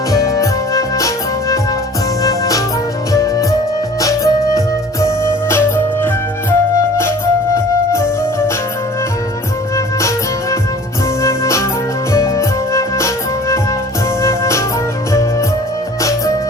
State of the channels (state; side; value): normal; both; correlation 0.47